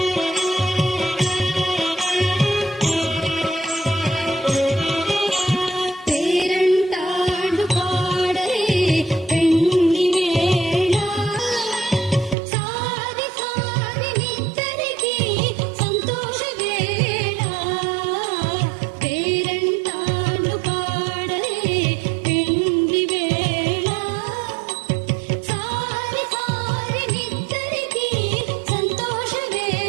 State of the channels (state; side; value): drops out; left; at 12.4 s